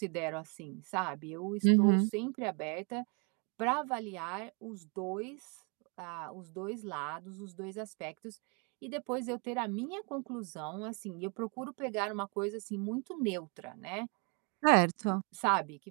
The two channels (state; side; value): quieter; left; 35.0 dB